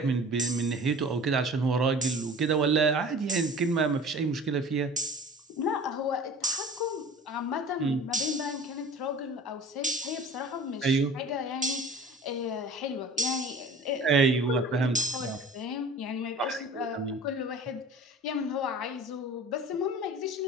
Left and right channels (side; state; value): both; normal; correlation 0.42